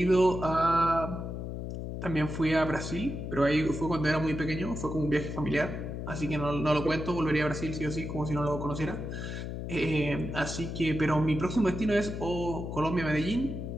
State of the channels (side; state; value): left; noise; hum, 6 dB below the sound